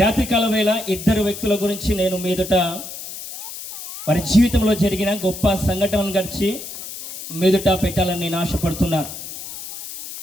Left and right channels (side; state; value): left; noise; hiss, 11 dB below the sound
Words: రాత్రికాల వేళ ఇద్దరు వ్యక్తుల గురించి నేను మీదట వారి జీవితంలో జరిగిన గొప్ప సంఘటనలను గడిచి మీదట పెట్టాలని నేను ఆశపడుతున్నాను.